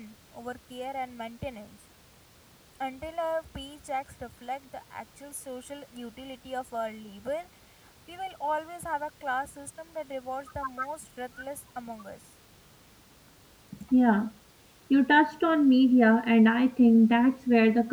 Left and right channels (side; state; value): both; identical; correlation 1.00